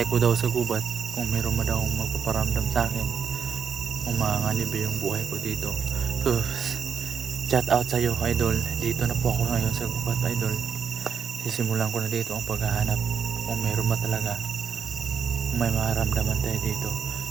ko daw sa gubat kung meron mo daw magpaparamdam sa akin. Kung makakalibre yung buhay ko dito. So, shout out sa iyo idol. Dito na po ako ngayon sa gubat idol. Sisimulan ko na dito ang paghahanap. Kung meron ba talaga. Kung may makaramdaman tayo dito.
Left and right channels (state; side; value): quieter; left; 6.8 dB